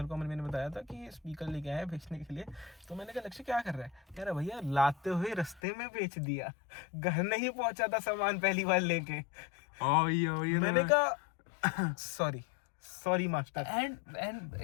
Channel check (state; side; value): drops out; right; at 5.6 s